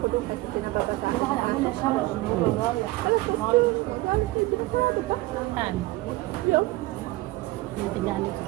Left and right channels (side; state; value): left; quieter; 19.3 dB